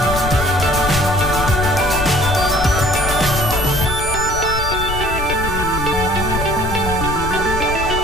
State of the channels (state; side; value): noise; left; rumble, 5 dB below the sound